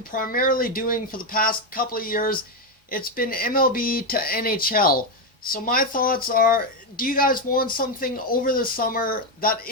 primarily doing for the past couple of years. It's been MLB to NHL. So my thoughts are, do you guys want something over the summer that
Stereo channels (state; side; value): normal; both; correlation 0.07